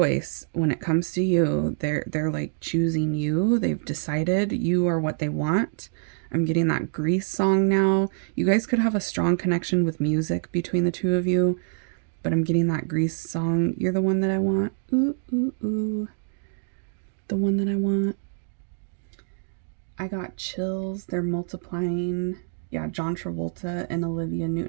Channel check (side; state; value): left; silent; digital silence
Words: when it comes to you. They're like choosing you. They've decided you are what they want. I'm getting that Grease song now. You guys could have a strong connection with music between the two of you, but I'm getting that Grease song. You're the one that I want. Ooh, ooh, ooh. The one that I want. I got chills. They're multiplying. Yeah, John Travolta and Olivia